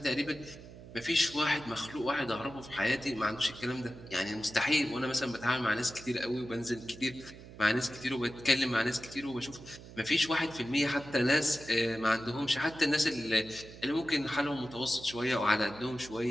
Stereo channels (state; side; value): noise; right; hum, 16 dB below the sound